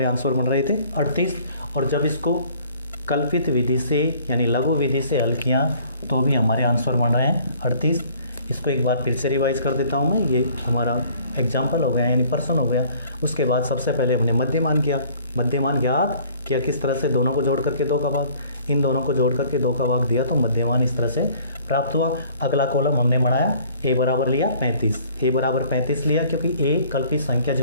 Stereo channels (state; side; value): inverted; both; correlation -0.55